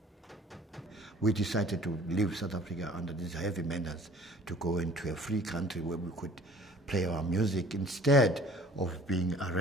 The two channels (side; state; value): both; normal; correlation 0.51